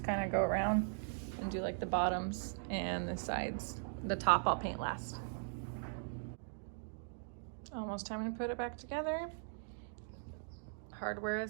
kind of go around and do like the bottoms and the sides. The top I'll paint last. Almost time to put it back together. Hardware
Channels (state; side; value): silent; left; digital silence